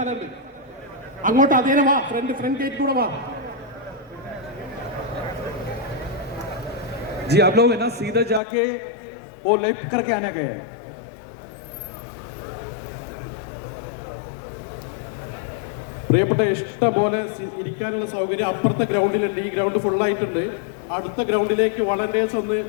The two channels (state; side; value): drops out; right; at 8.4 s